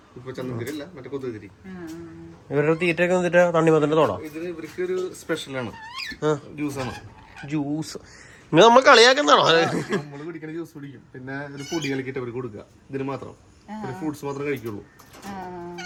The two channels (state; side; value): identical; both; correlation 1.00